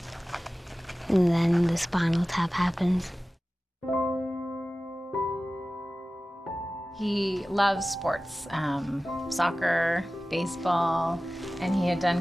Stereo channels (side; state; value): both; normal; correlation 0.96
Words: and then the spinal tap happens. He loves sports, soccer, baseball, and he had